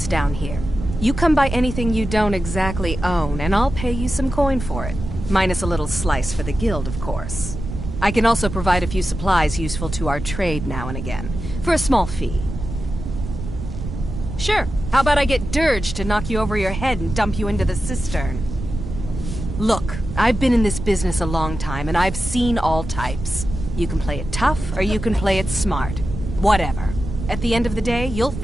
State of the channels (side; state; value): right; noise; rumble, 7 dB below the sound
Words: down here. You come by anything you don't exactly own, and I'll pay you some coin for it. Minus a little slice for the guild, of course. I can also provide a few supplies useful to our trade now and again, for a small fee. Sure, how about I get Dirge to knock you over your head and dump you into the cistern? Look, I've been in this business a long time, and I've seen all types. You can play it tough, or you can play it smart. Whatever. At the end of the day, you'll